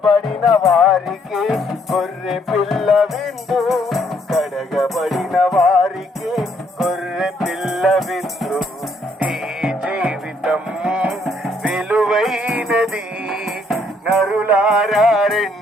వారికి గొర్రె పిల్ల విందు, కడగబడిన వారికి గొర్రె పిల్ల విందు. ఈ జీవితం విలువైనది, నరులారా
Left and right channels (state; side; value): normal; both; correlation 0.68